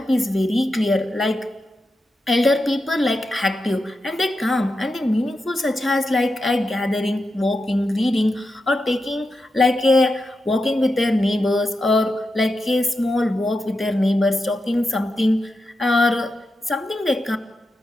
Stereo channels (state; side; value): normal; both; correlation 0.88